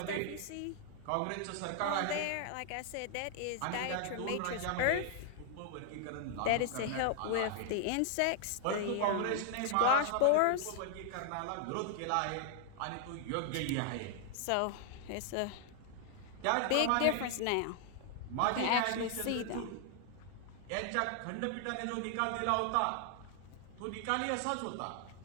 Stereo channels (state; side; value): different; both; correlation 0.00